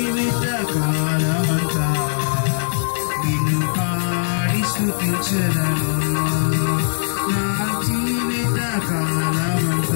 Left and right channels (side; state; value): right; silent; digital silence